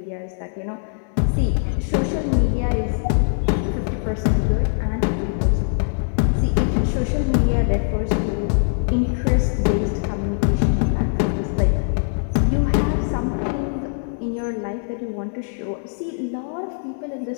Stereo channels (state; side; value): silent; right; digital silence